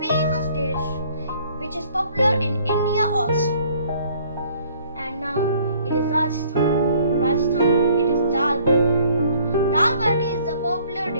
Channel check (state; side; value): inverted; both; correlation -0.59